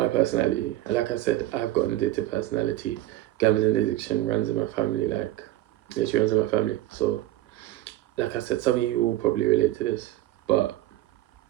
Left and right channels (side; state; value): left; quieter; 15.5 dB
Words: personality, and like I said, I've got an addictive personality. Gambling addiction runs in my family, like literally runs in my family. So, like I said, some of you will probably relate to this, but